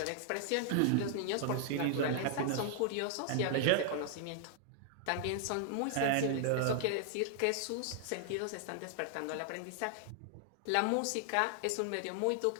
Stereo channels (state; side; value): different; both; correlation -0.01